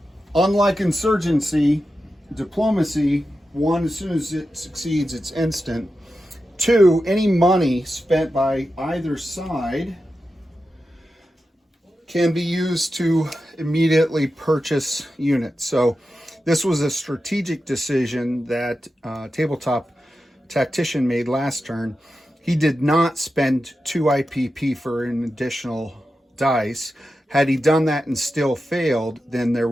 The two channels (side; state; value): both; normal; correlation 0.91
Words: Unlike insurgency, diplomacy, 1, as soon as it succeeds, it's instant. 2, any money spent by either side can be used to immediately purchase units. So this was a strategic decision that Tabletop Tactician made last turn. He did not spend 2 IPP for an additional dice. Had he done that and still failed, then there